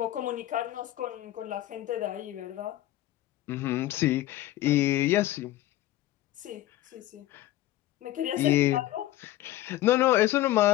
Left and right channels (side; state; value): right; quieter; 15.0 dB